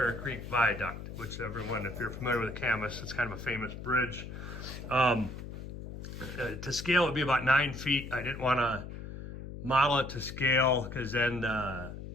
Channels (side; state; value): left; noise; hum, 10 dB below the sound